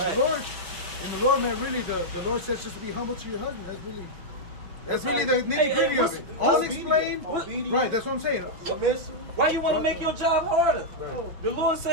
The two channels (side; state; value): left; late; 6.0 ms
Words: Lord, man, really the Lord says just to be humble to your husband. That's really the nitty gritty of it. All explained, right? That's what I'm saying. Why you want to make your job harder? The Lord